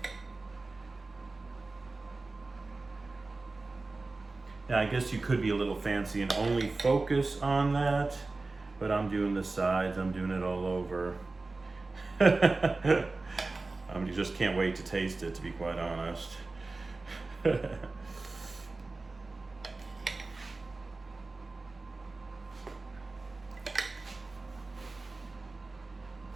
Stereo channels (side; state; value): left; quieter; 3.4 dB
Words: Now I guess you could be a little fancy and only focus on that, but I'm doing the sides, I'm doing it all over. You just can't wait to taste it, to be quite honest. A